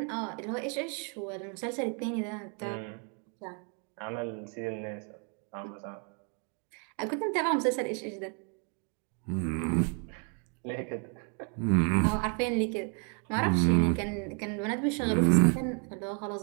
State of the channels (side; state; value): left; quieter; 39.2 dB